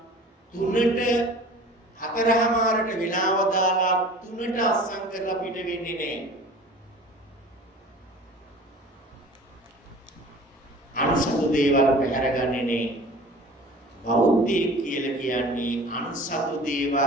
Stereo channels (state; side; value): normal; both; correlation 0.43